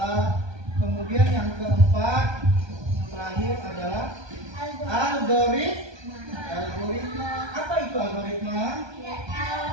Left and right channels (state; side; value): late; left; 1.2 ms